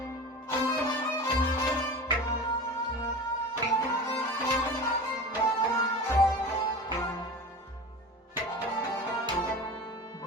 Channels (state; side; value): normal; both; correlation 0.33